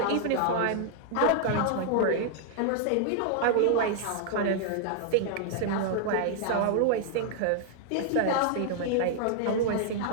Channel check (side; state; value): both; different; correlation -0.01